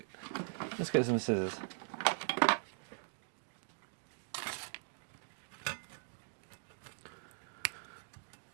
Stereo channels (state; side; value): silent; left; digital silence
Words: Let's get some scissors.